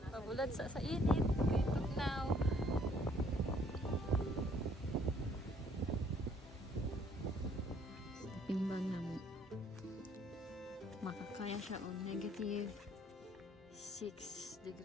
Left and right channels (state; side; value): normal; both; correlation 0.62